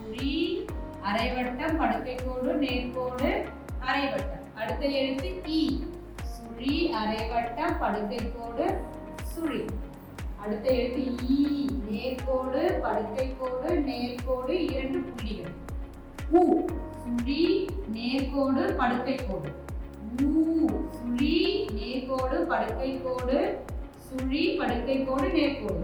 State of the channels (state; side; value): identical; both; correlation 1.00